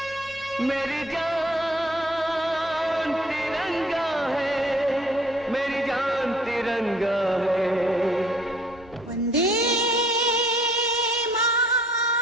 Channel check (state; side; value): normal; both; correlation 0.57